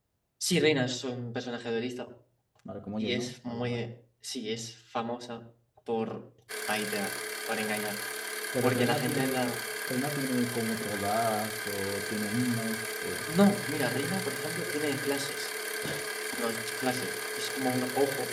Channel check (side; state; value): both; identical; correlation 1.00